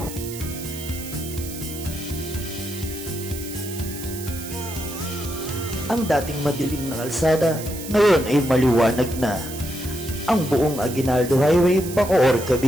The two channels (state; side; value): noise; right; hiss, 11 dB below the sound